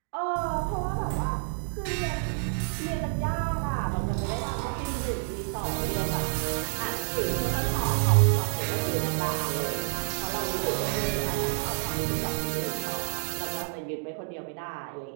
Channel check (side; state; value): left; silent; digital silence